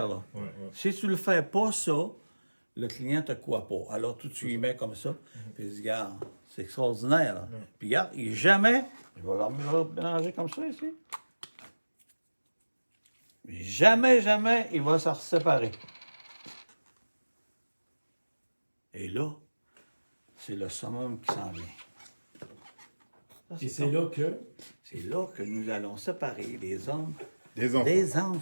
là. Ouais, ouais. Si tu ne le fais pas, ça, le client te croit pas. Alors, tu y mets comme ça, puis il dit, regarde, c'est extraordinaire, là. Puis regarde, il va le mélanger comme ça, ici. Jamais, il va se séparer. Et là, c'est le summum qui s'en vient. Ça, Et c'est là que. C'est là que nous allons séparer les hommes Des enfants. des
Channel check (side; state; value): both; inverted; correlation -1.00